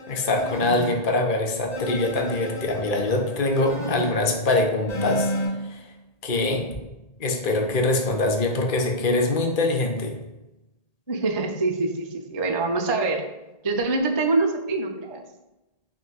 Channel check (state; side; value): late; right; 1.8 ms